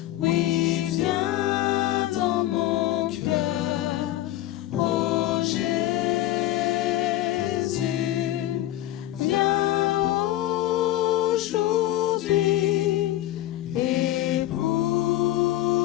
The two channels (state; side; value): quieter; right; 14.5 dB